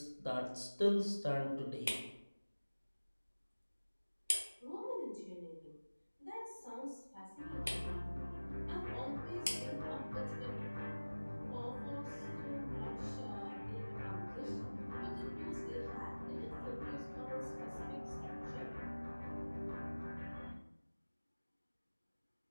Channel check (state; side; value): inverted; both; correlation -1.00